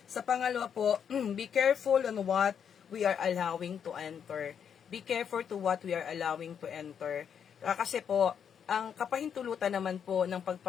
Sa pangalawa po, be careful on what we are allowing to enter. Be careful to what we are allowing to enter. Kasi po, ang kapahintulutan naman po ng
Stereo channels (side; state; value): right; quieter; 7.8 dB